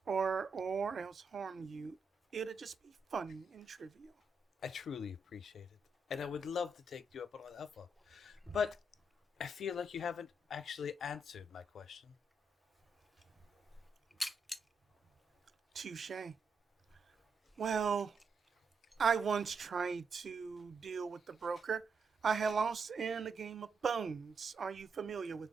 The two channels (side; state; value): left; quieter; 3.1 dB